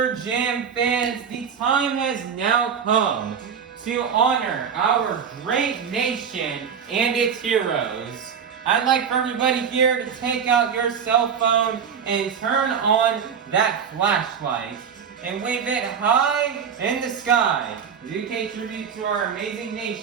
Jam fans, the time has now come to honor our great nation and its heroes. I'd like for everybody here to take out your cell phone and turn on that flashlight and wave it high in the sky as we pay tribute to our amazing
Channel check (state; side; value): quieter; left; 7.2 dB